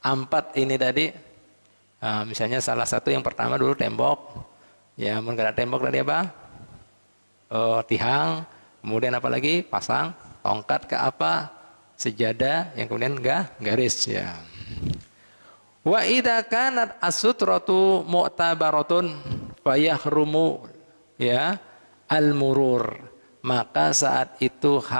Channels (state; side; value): inverted; both; correlation -1.00